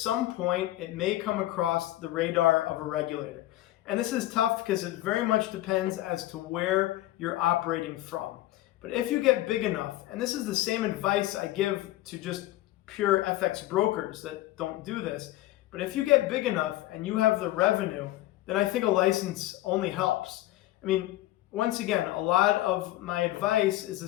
point it may come across the radar of a regulator. And this is tough because it very much depends as to where you're operating from. But if you get big enough, and this is the same advice I give to just pure FX brokers that don't do this, but if you get big enough and you have the revenue, then I think a license only helps. I mean, once again, a lot of my advice is the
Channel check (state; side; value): quieter; right; 15.8 dB